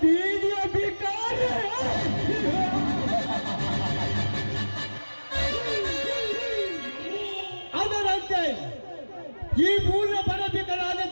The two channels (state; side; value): inverted; both; correlation -1.00